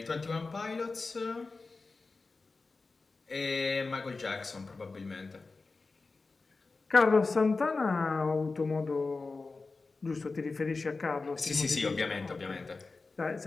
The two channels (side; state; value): right; quieter; 3.9 dB